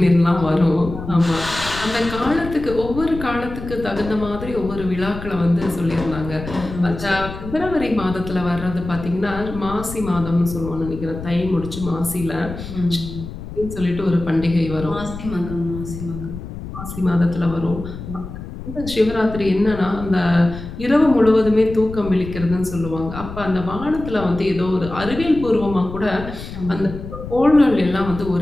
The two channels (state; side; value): noise; left; rumble, 10 dB below the sound